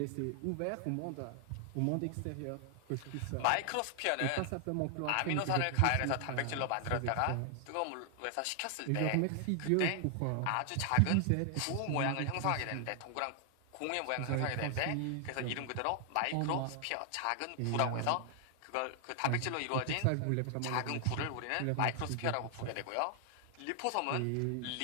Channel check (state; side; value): different; both; correlation 0.00